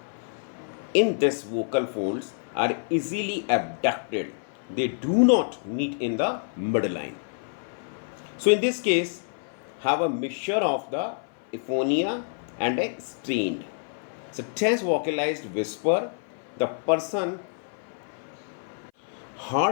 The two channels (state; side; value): silent; right; 56 dB below the other